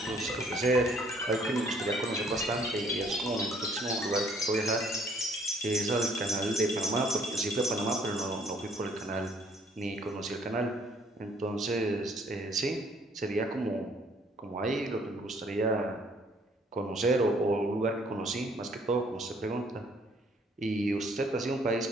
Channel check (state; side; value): normal; both; correlation 0.62